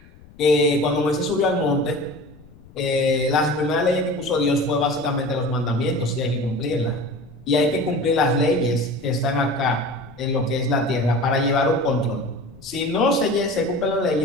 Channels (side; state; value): left; noise; rumble, 23 dB below the sound